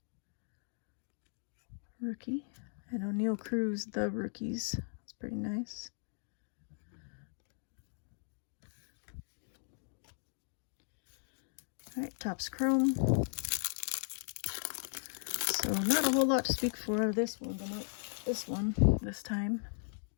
rookie. And O'Neal Cruz, the rookies. That's pretty nice. All right, Topps Chrome. So not a whole lot to speak for out of this one, but not this time.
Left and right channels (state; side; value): silent; right; digital silence